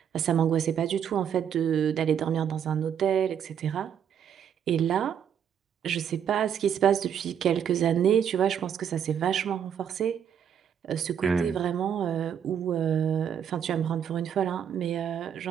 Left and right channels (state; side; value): quieter; left; 8.5 dB